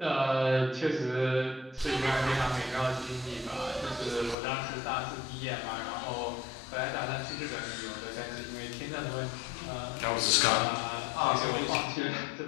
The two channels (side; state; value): right; drops out; at 4.4 s